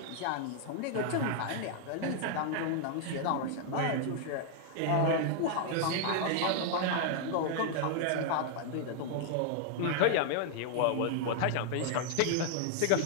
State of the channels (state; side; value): different; both; correlation 0.00